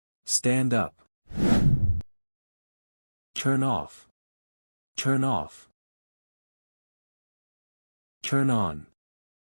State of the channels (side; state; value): both; inverted; correlation -1.00